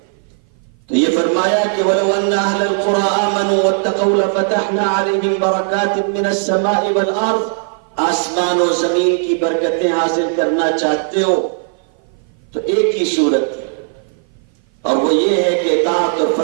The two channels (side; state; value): left; silent; 56 dB below the other